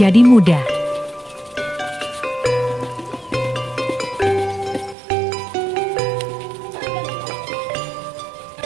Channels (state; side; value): drops out; left; at 5.0 s